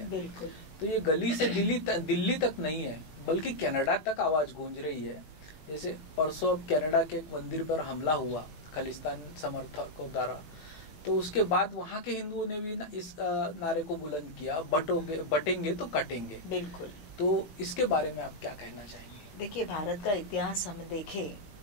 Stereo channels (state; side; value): late; right; 19 ms